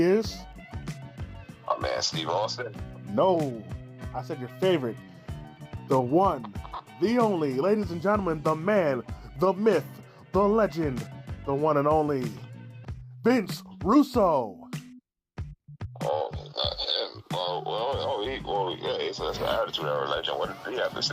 is? Oh man, Steve Austin. No, I said your favorite. The one, the only, ladies and gentlemen, the man, the myth, the legend, the one and only, Vince Russo. Oh, not him. Yeah, he's an attitude era legend. What did he have to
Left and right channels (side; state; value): both; identical; correlation 1.00